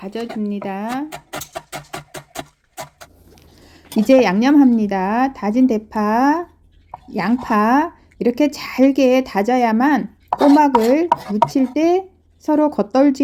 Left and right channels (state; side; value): identical; both; correlation 1.00